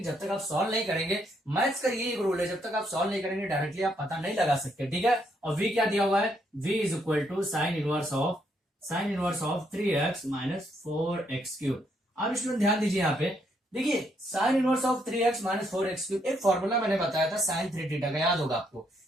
जब तक आप सॉल्व नहीं करेंगे, मैथ्स का ये एक रूल है, जब तक आप सॉल्व नहीं करेंगे डायरेक्टली आप पता नहीं लगा सकते। ठीक है, और v क्या दिया हुआ है, v is equal to sine inverse of 3x minus 4x cube. अब इसमें ध्यान दीजिए, यहाँ पे देखिए sine inverse of 3x minus 4x cube, एक फॉर्मूला मैंने बताया था साइन 3 थीटा का, याद होगा आपको।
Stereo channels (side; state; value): both; normal; correlation 0.74